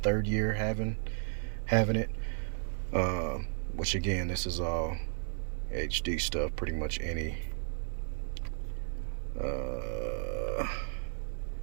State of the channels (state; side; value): silent; left; digital silence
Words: year having it, which again, this is all HD stuff. Pretty much any